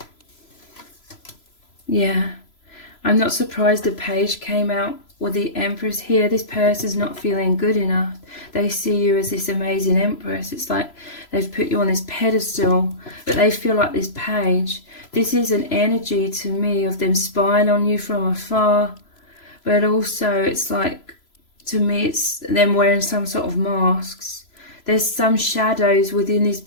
yeah, I'm not surprised the Page came out with the Empress here. This person's not feeling good enough. They see you as this amazing Empress. It's like they've put you on this pedestal, but they feel like this Page. This is an energy to me of them spying on you from afar, but also it's like, to me, it's them wearing some sort of masks. There's some shadows within this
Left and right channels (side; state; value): right; late; 3.0 ms